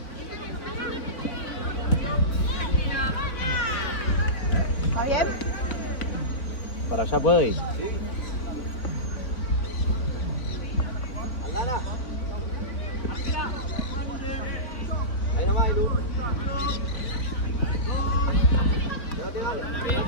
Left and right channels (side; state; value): right; late; 3.8 ms